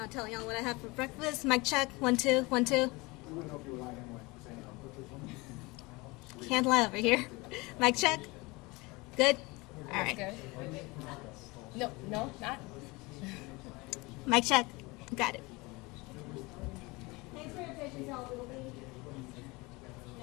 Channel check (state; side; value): quieter; right; 24.3 dB